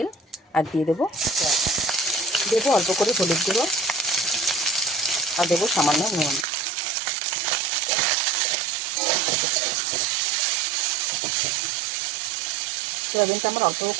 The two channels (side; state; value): left; drops out; at 6.5 s